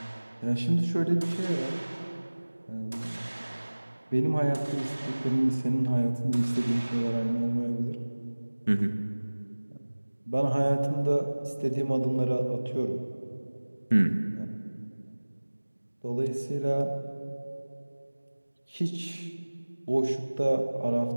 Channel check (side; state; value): both; inverted; correlation -1.00